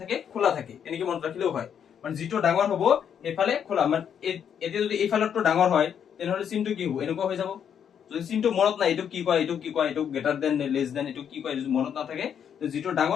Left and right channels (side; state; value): right; quieter; 8.3 dB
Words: খোলা থাকে, এনেকে মনত ৰাখিলেও হয়। মানে যেটো ডাঙৰ হ'ব এইফালে খোলা, মানে এতিয়া যদি এইফালৰটো ডাঙৰ হয় তেনেহলে চিনটো কি হ'ব, এনেকুৱা হৈ যাব। যদি চিনটো মনত নাই, এইটো কি কয়, এইটো কি কয়, এইটো গ্রেটার দেন নে লেস দেন, এইটো কি কয়, যদি মনত নাথাকে, তো যেটো